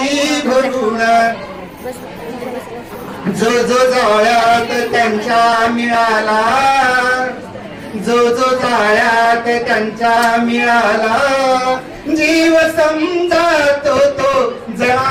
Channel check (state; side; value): identical; both; correlation 1.00